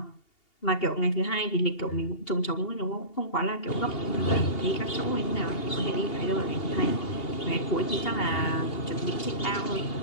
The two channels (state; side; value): late; right; 2.8 ms